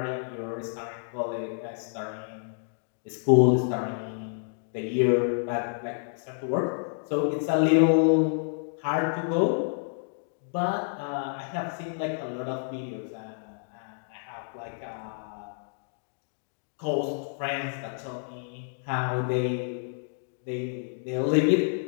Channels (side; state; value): right; silent; digital silence